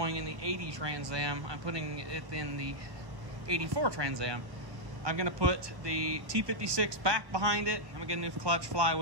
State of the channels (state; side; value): late; left; 1.2 ms